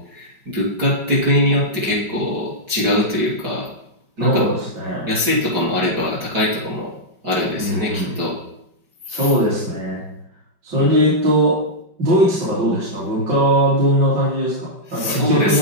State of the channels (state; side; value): late; left; 5.3 ms